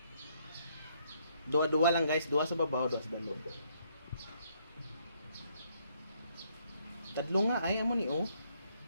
dua-dua lang guys, dua sa babaw, dua sa balog. Tadlo nga ay amo ni oh.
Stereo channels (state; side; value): inverted; both; correlation -0.70